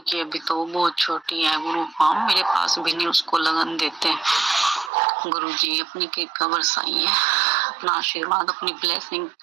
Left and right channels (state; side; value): drops out; left; at 4.9 s